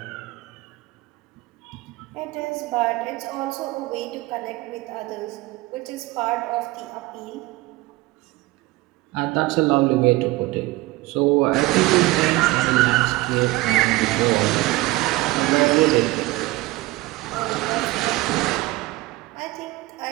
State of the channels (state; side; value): quieter; left; 19.4 dB